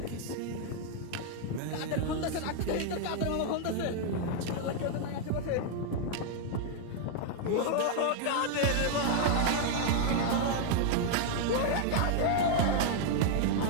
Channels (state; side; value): different; both; correlation 0.00